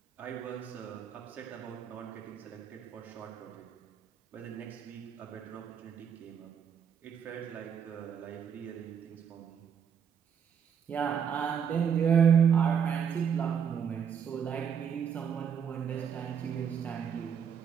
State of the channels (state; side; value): quieter; left; 7.6 dB